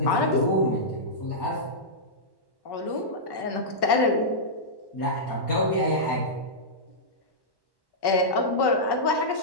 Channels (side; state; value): right; late; 1.1 ms